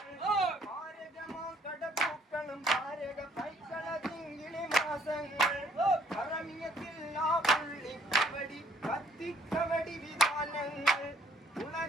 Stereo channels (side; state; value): both; normal; correlation 0.64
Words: ഭാരകമാം കടപ്പൂക്കളും ഭാരക പൈക്കള തിങ്കിളി മാസങ്ങൾ കറമിയത്തില്ലാ പുള്ളിക്കവടി കത്തിക്കവടി വിധാനങ്ങൾ